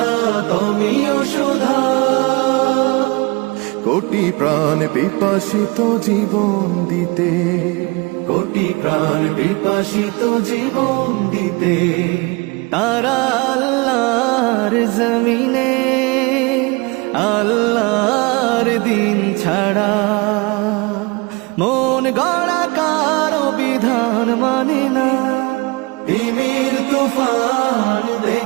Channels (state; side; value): quieter; left; 26.9 dB